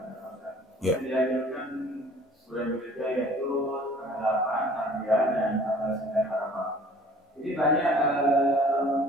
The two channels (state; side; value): normal; both; correlation 0.51